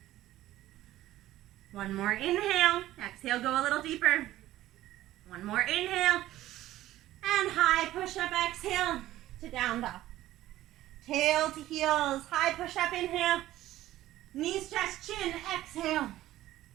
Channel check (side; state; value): left; quieter; 14.8 dB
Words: 1 more inhale. Exhale, go a little deeper. 1 more inhale. And high push-up, exhale to down dog. Tail to heels, high push-up, inhale. Knees, chest, chin, exhale.